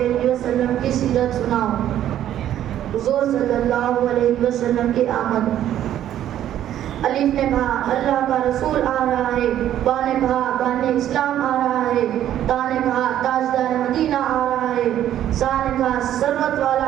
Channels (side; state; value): left; quieter; 11.5 dB